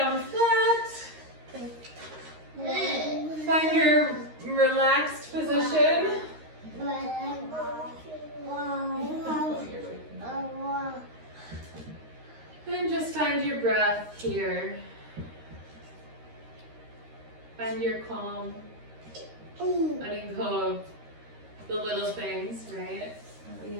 flat. Find your relaxed position. And just find your breath here. Find your calm. Letting go of the little things, right? That we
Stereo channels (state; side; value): late; left; 13 ms